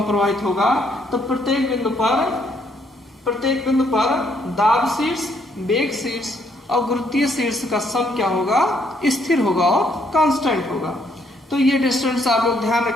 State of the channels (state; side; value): normal; both; correlation 0.70